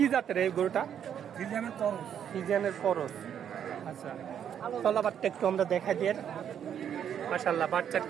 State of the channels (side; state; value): left; quieter; 9.0 dB